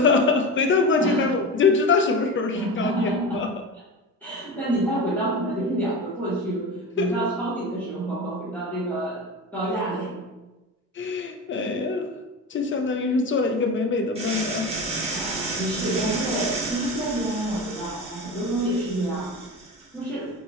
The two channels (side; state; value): both; normal; correlation 0.26